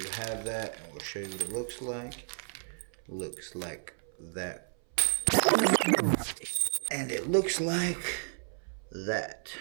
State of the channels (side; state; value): left; silent; 56 dB below the other